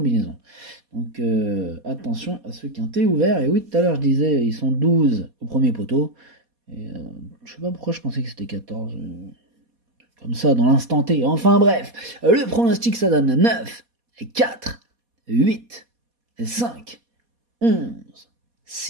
Donc attention à ce quintet ouvert. Et oui, tout à l'heure je disais, ils sont 12 au premier poteau. Et je sais pas pourquoi je pensais que c'était 14. Comme ça, dans l'instant T. Enfin bref, le pronostic ça donne 9, 4, 8, 5, 11,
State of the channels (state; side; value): late; left; 4.2 ms